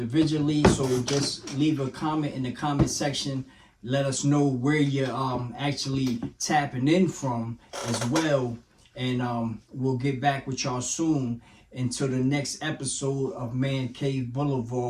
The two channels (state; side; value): identical; both; correlation 1.00